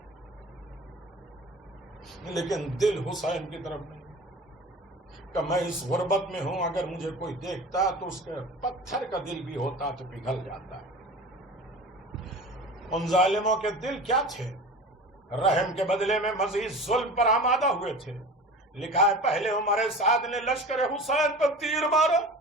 لیکن دل حسین کی طرف نہیں کہ میں اس غربت میں ہوں، اگر مجھے کوئی دیکھتا تو اس کے پتھر کا دل بھی ہوتا تو پگھل جاتا ہے. ان ظالموں کے دل کیا تھے؟ رحم کے بدلے میں مزید ظلم پر آمادہ ہوئے تھے. لکھا ہے پہلے عمر سعد نے لشکر حسین پر تیر مارا.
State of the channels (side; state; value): both; normal; correlation 0.36